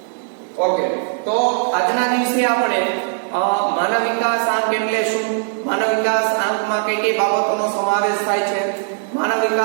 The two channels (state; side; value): silent; left; digital silence